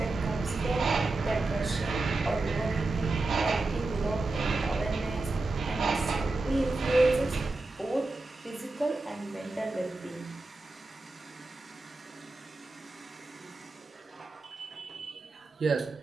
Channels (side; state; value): left; quieter; 3.2 dB